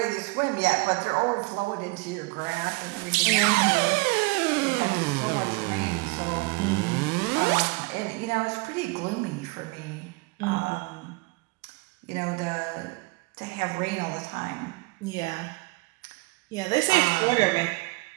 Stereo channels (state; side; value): quieter; left; 25.7 dB